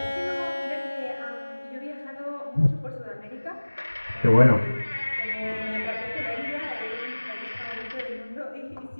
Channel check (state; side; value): inverted; both; correlation -1.00